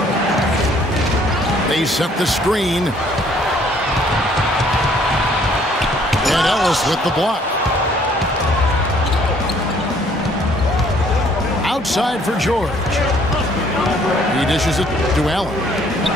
They set the screen. And Ellis with the block. Outside for George. He dishes it to Allen.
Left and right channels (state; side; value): normal; both; correlation 0.61